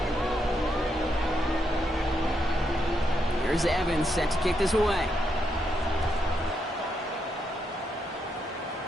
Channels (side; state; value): both; normal; correlation 0.80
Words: Here's Evans set to kick this away.